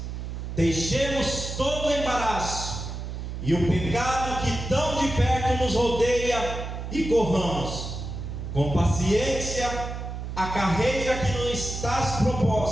deixemos todo o embaraço e o pecado que tão de perto nos rodeia e corramos com paciência a carreira que nos está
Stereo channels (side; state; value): right; noise; hum, 6 dB below the sound